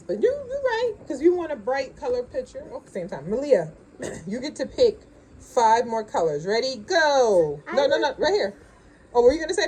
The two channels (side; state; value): both; identical; correlation 1.00